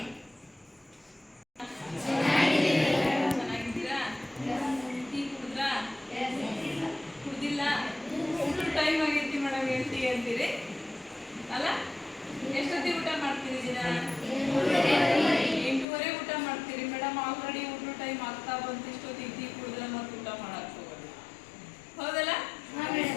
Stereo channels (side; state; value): right; drops out; at 15.9 s